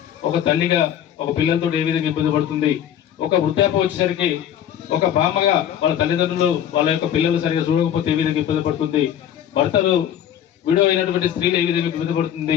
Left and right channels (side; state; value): right; quieter; 10.2 dB